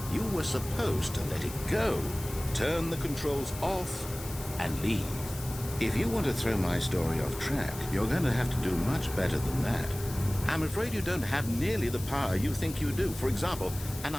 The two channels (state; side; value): noise; left; hiss, 14 dB below the sound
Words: You were supposed to let it go, turn the controls off, and leave. If you want to throw my story off track, you're going to have to do much better than that. I'm afraid you don't have nearly the power you think you do. For example, and